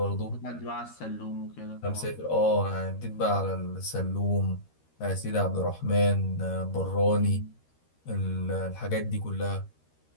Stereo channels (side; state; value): right; late; 13 ms